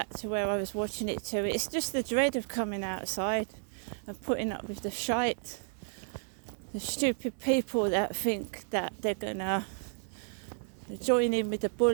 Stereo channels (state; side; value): silent; left; 56 dB below the other